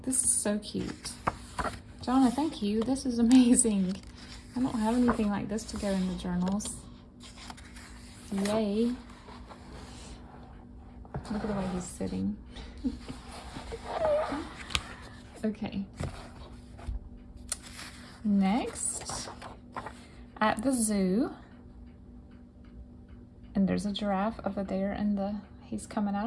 This is so cute. Johnna, thank you. This is amazing. I don't have anything like this to go in the journals. Yay. Look at the way he's sitting. Okay. Next, at the zoo, and there's a giraffe over there, and he's coming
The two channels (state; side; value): identical; both; correlation 1.00